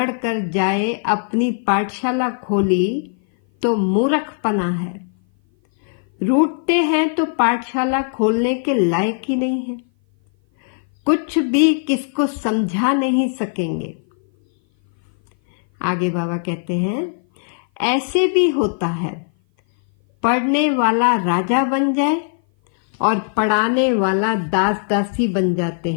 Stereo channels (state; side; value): silent; right; 57 dB below the other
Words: कर जाए अपनी पाठशाला खोली तो मूर्खपना है। रूठते हैं तो पाठशाला खोलने के लायक ही नहीं है। कुछ भी किसको समझा नहीं सकेंगे। आगे बाबा कहते हैं, ऐसे भी होता है, पढ़ने वाला राजा बन जाए और पढ़ाने वाला दास दासी बन जाते